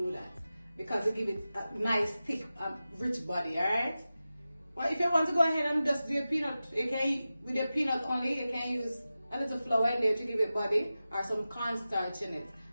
that because it gives it a nice, thick, rich body. Alright. But if you want to go ahead and just do your peanut, you can, with your peanut only, you can use a little flour in there to give it body or some cornstarch in it.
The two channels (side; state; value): both; inverted; correlation -0.94